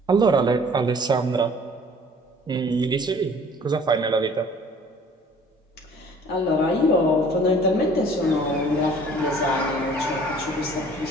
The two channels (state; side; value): normal; both; correlation 0.52